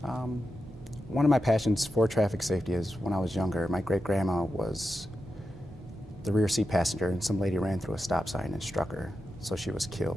One of my passions for traffic safety is when I was younger, my great-grandma was the rear seat passenger, and some lady ran through a stop sign and struck her, so she was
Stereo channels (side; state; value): both; normal; correlation 0.90